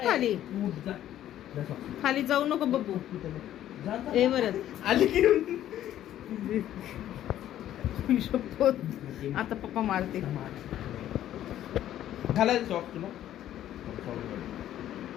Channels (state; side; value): quieter; right; 12.1 dB